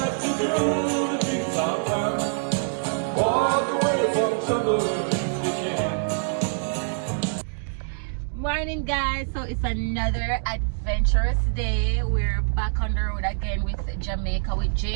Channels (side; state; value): left; silent; digital silence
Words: you do the things I've done. Walk away from trouble if you can. Morning guys, so it's another adventurous day. We're back on the road again with Jamaica with